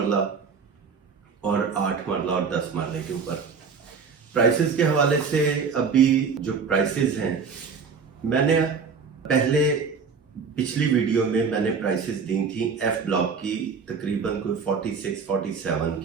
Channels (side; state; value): left; quieter; 5.6 dB